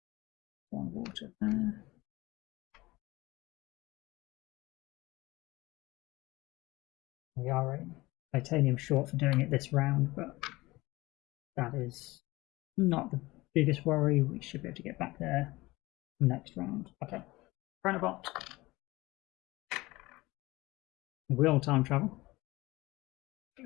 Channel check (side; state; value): right; quieter; 20.3 dB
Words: 1 water there. We are a titanium short for doing it this round, but that is not the biggest worry. We should be able to get back there next round. Okay, Chronobot will time travel. Get